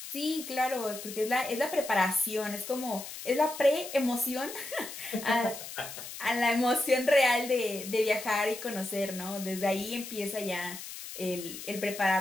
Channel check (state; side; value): noise; left; hiss, 10 dB below the sound